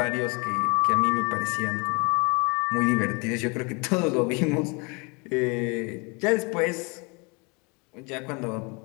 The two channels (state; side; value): quieter; right; 30.1 dB